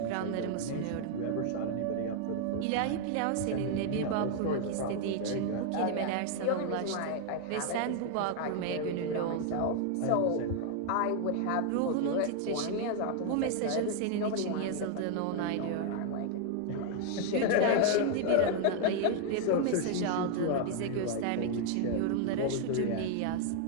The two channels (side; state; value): both; different; correlation 0.00